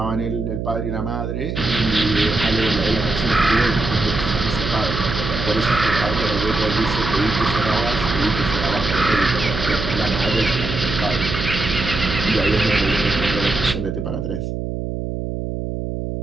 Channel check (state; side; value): noise; right; hum, 4 dB below the sound